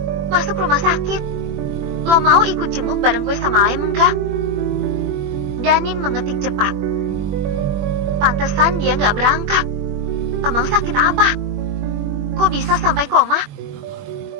Masuk rumah sakit. Lo mau ikut jenguk bareng gue sama Layan enggak? Danin mengetik cepat. Pantesan dia nggak berangkat. Emang sakit apa? Kok bisa sampai koma?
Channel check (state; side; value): late; left; 21 ms